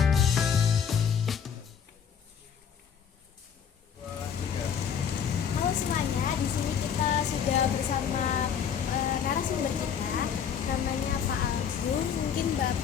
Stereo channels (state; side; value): quieter; right; 7.7 dB